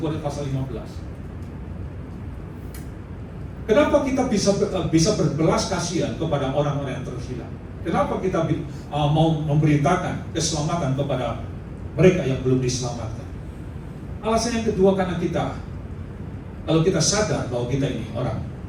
pasal 15. Kenapa kita bisa berbelas kasihan kepada orang-orang yang terhilang? Kenapa kita mau memberitakan keselamatan kepada mereka yang belum diselamatkan? Alasan yang kedua, karena kalau kita sadar bahwa kita ini orang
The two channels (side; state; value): both; identical; correlation 1.00